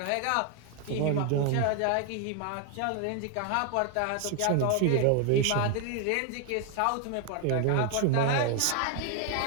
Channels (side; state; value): both; different; correlation 0.00